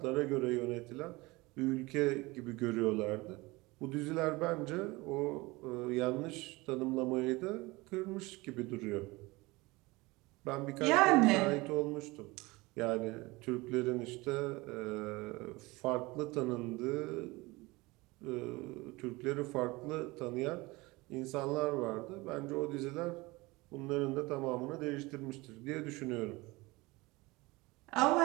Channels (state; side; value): quieter; left; 22.6 dB